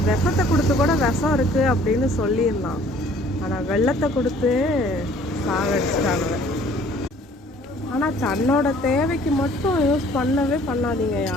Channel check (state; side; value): normal; both; correlation 0.55